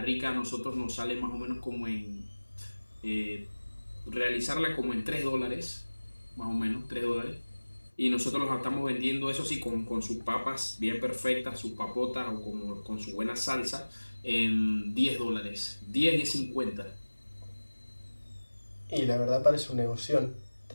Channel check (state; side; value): inverted; both; correlation -1.00